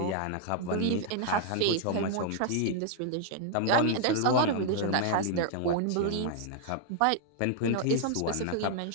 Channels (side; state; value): both; different; correlation 0.00